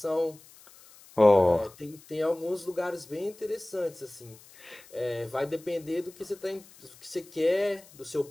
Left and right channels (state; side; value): noise; left; hiss, 23 dB below the sound